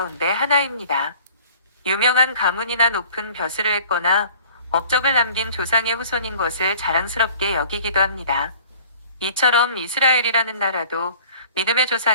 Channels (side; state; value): both; inverted; correlation -0.49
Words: 하나입니다. 유명한 가문이나 높은 벼슬을 했거나 업적을 남긴 조상의 후손인 것을 자랑스럽게 여기기도 합니다. 이처럼 이스라엘이라는 나라도 믿음의